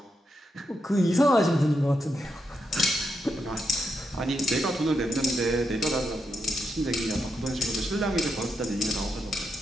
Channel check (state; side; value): normal; both; correlation 0.83